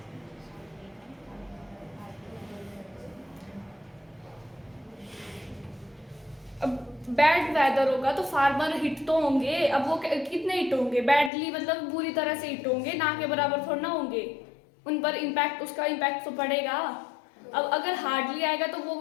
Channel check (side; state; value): right; drops out; at 11.3 s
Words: अब बैड वेदर होगा तो फार्मर हिट तो होंगे, अब वो कितने हिट होंगे, बैडली मतलब बुरी तरह से हिट होंगे, ना के बराबर थोड़ा ना होंगे, उन पर इम्पैक्ट, उसका इम्पैक्ट तो पड़ेगा। अब अगर हार्डली आएगा तो वो